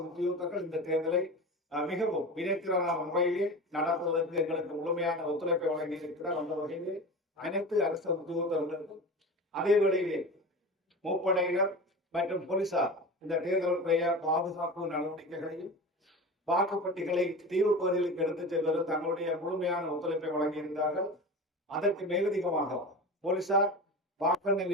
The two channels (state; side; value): normal; both; correlation 0.30